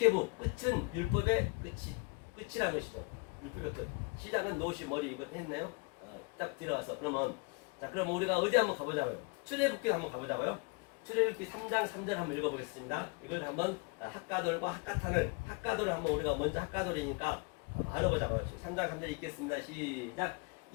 끝은 율법의 끝이라는 것이죠. 시작은 노시 머리 이거 했네요. 딱 들어가서 그러면 자 그럼 우리가 어디 한번 가보자고요. 출애굽기 한번 가보자고요. 출애굽기 3장 3절 한번 읽어보겠습니다. 이걸 한번 학가돌과 학가돌을 한번 우리가 먼저 학가돌이니까 알아보자고요. 3장 3절 읽겠습니다. 시작.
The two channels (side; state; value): right; quieter; 30.0 dB